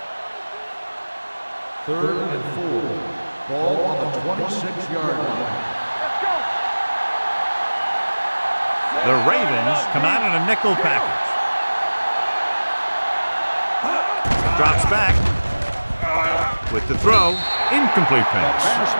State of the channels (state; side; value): inverted; both; correlation -1.00